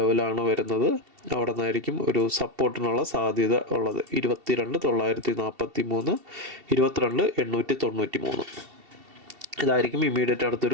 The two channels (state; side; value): late; left; 2.7 ms